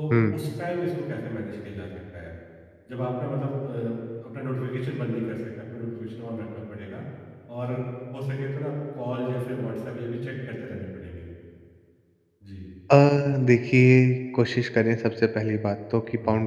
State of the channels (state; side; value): identical; both; correlation 1.00